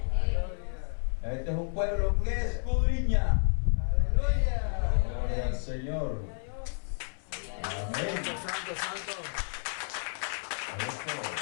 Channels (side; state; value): right; silent; 57 dB below the other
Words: Este es un pueblo que escudriña. Aleluya. Gloria al Señor. Amén. Santo, santo. Eso,